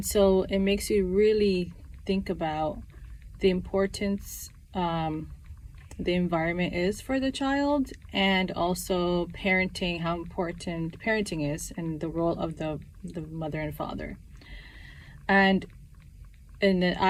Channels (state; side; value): identical; both; correlation 1.00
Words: so it makes you really think about the importance the environment is for the child, and also parenting, how important parenting is, and the role of the mother and father. And then